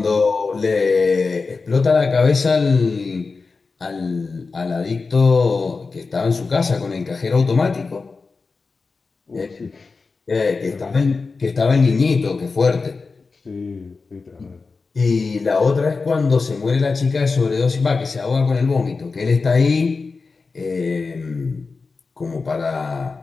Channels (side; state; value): right; quieter; 4.3 dB